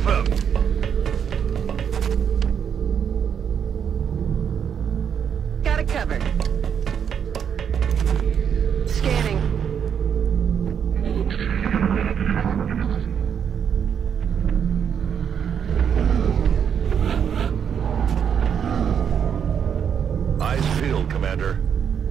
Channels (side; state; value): left; quieter; 7.9 dB